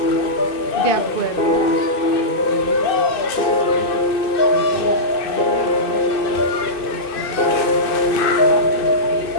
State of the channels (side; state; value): right; late; 2.6 ms